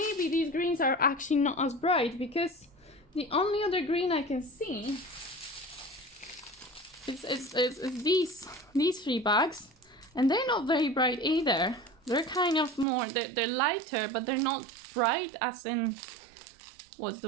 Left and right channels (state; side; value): drops out; left; at 12.9 s